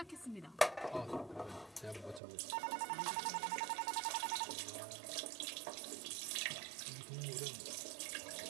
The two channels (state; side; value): drops out; left; at 2.2 s